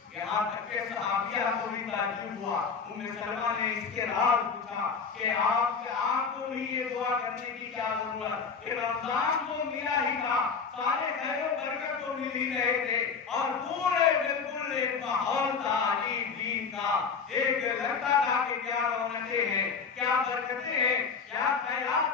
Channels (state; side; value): quieter; right; 5.6 dB